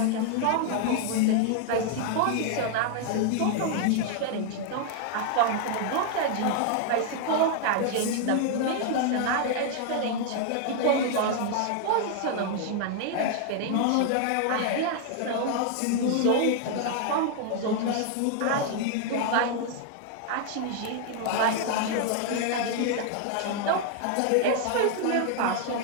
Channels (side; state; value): both; different; correlation 0.00